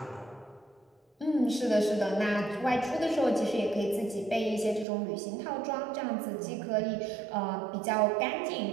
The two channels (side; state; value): left; drops out; at 4.9 s